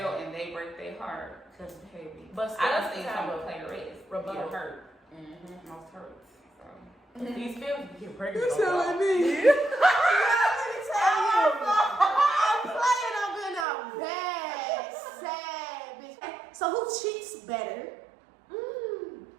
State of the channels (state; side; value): drops out; left; at 13.7 s